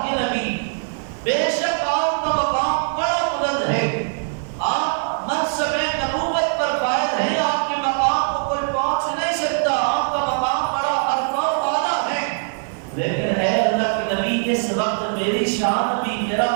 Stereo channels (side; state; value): left; silent; digital silence